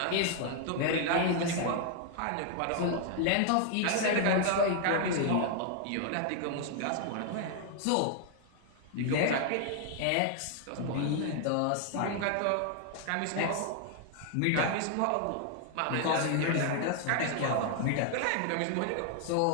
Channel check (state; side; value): different; both; correlation 0.00